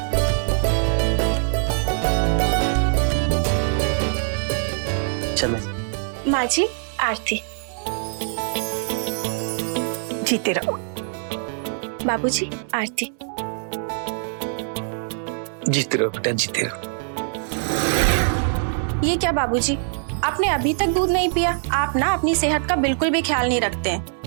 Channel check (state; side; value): silent; left; 63 dB below the other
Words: चलो माँ जी, आरती। जीते रहो। बाबूजी, आरती। जीते रहो बेटा, जीते रहो। ये क्या बाबूजी, आपने अभी तक दूध नहीं पिया? आप ना अपनी सेहत का बिल्कुल भी ख्याल नहीं रखते हैं।